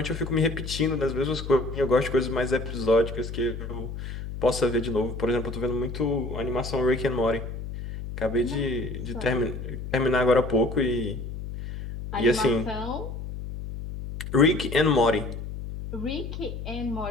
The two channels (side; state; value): left; noise; hum, 8 dB below the sound